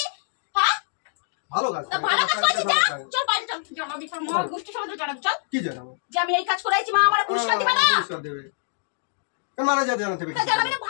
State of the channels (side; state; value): right; silent; digital silence